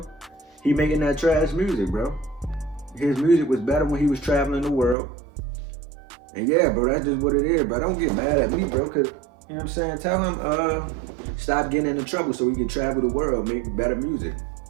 He making that trash music, bro. His music was better when he was traveling the world. And yeah, bro, that's just what it is, bro. Don't get mad at me, bro, cause you know what I'm saying? Tell him stop getting into trouble so he can travel the world, make better music.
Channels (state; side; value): drops out; left; at 5.0 s